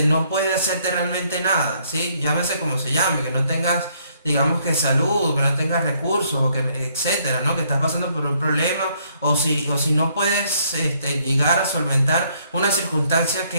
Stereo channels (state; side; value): inverted; both; correlation -0.68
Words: no puede hacerte realmente nada, ¿sí? Llámese como se llame, que no tengas, digamos, que salud, que no tengas recursos, o que, etcétera, ¿no? Que estás pasando por un problema, o si no puedes llegar a solventar una circunstancia